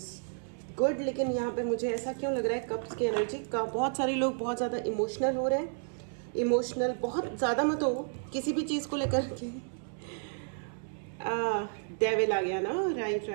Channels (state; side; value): silent; left; 57 dB below the other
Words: गुड। लेकिन यहाँ पे मुझे ऐसा क्यों लग रहा है, कप्स की एनर्जी का बहुत सारे लोग बहुत ज़्यादा इमोशनल हो रहे हैं। इमोशनल बहुत ज़्यादा मत हो किसी भी चीज़ को लेकर के। डेविल आ गया ना,